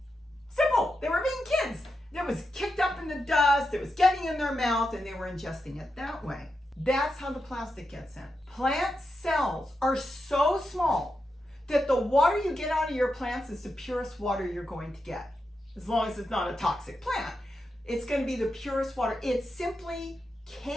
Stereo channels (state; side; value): normal; both; correlation 0.87